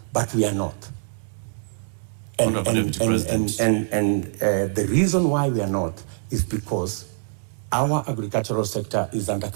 but we are not. And the reason why we are not is because our agricultural sector is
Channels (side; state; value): left; silent; 63 dB below the other